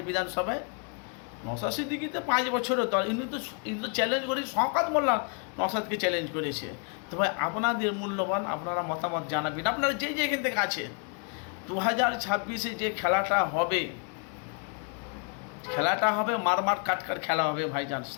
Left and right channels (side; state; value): right; quieter; 38.8 dB